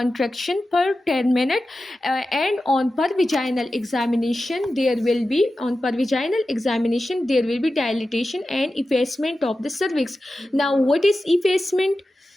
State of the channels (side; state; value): both; normal; correlation 0.93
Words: per 10 minutes, and on per vaginal examination there will be dilatation and effacement of the cervix. Now, what is effacement?